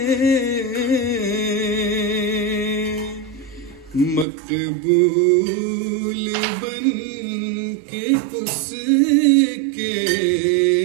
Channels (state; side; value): drops out; left; at 4.2 s